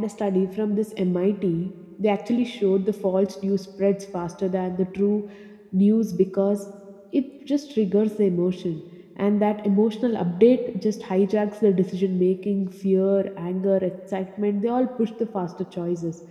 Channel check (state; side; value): identical; both; correlation 1.00